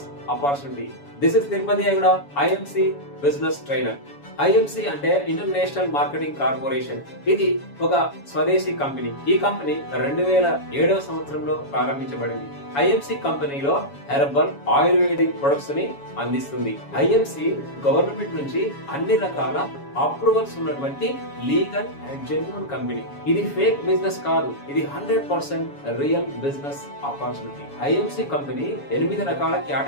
opportunity. This is Tirupati Ayyaguda, IMC business trainer. IMC అంటే ఇంటర్నేషనల్ మార్కెటింగ్ కార్పొరేషన్. ఇది ఒక స్వదేశీ కంపెనీ. ఈ కంపెనీ 2007వ సంవత్సరంలో ప్రారంభించబడింది. ఐఎంసి కంపెనీలో హెర్బల్ ఆయుర్వేదిక్ ప్రొడక్ట్స్ ని అందిస్తుంది. ఐఎంసి గవర్నమెంట్ నుంచి అన్ని రకాల అప్రూవల్స్ ఉన్నటువంటి లీగల్ అండ్ జెన్యూన్ కంపెనీ. ఇది ఫేక్ బిజినెస్ కాదు, ఇది 100% real business opportunity. IMC company 8 రకాల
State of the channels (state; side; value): late; right; 7.1 ms